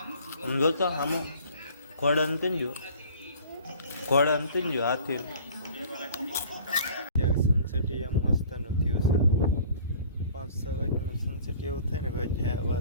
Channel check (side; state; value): both; inverted; correlation -0.49